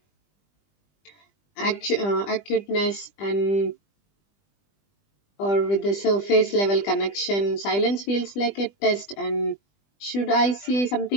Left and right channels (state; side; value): late; right; 20 ms